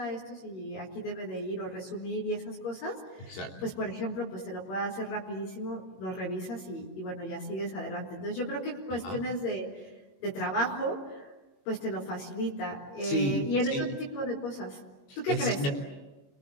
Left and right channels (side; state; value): right; late; 22 ms